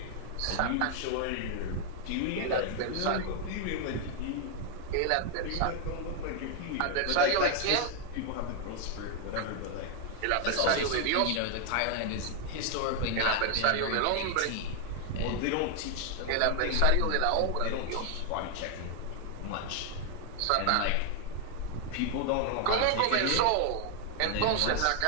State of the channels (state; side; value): different; both; correlation 0.00